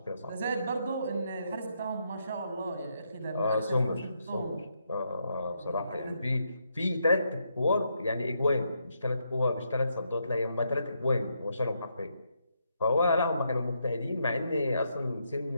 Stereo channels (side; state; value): both; inverted; correlation -0.79